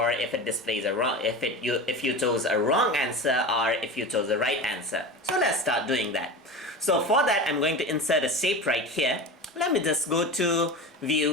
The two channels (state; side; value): normal; both; correlation 0.29